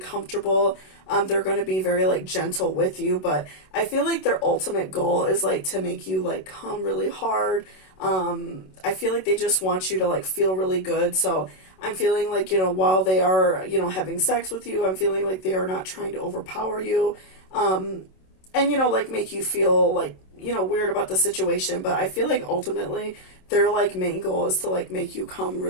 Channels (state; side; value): late; right; 27 ms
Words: They're going to be very like gentle with you, but I feel like their ultimate goal is like to make you like come really hard. I feel like they just want you to like feel really good. So I'm feeling like, while they are, having sex with you, I'm feeling like they are not trying to overpower you. And, like make you feel like, weird about the situation. But I feel like ultimately their like main goal is to like make you come